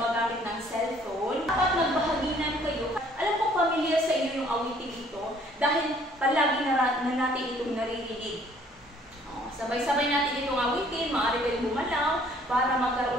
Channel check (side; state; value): both; normal; correlation 0.59